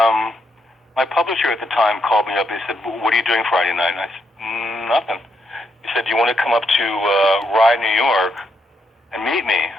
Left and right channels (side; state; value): both; normal; correlation 0.79